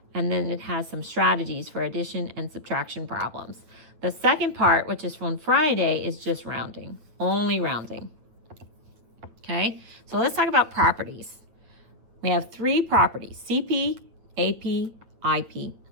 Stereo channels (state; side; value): late; left; 8.7 ms